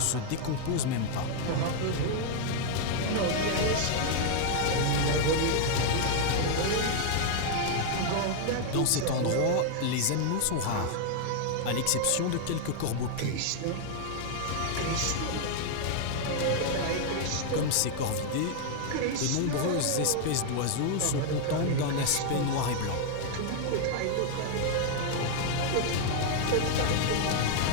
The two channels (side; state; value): both; different; correlation 0.00